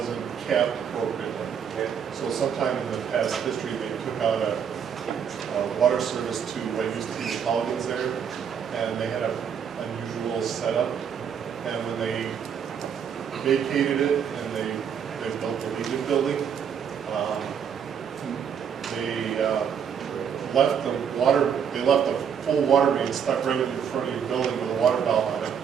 capped appropriately. Okay. So sometime in the past history, they took out a water service to what used to be the Colligan's there, and they had an unusual setup. And when they vacated it and they built the Legion building, they left the full water main stuck right in front of your building with a water valve on it.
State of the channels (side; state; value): left; quieter; 7.7 dB